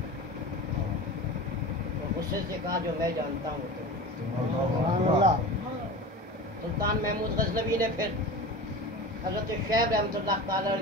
اور غصے سے کہا جو میں جانتا ہوں تو. سبحان اللہ. سلطان محمود غزنوی نے پھر حضرت شعیب رحمۃ اللہ تعالیٰ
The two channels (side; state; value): both; normal; correlation 0.32